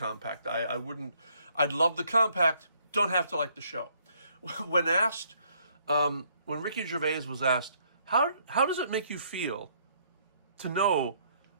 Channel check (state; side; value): inverted; both; correlation -0.67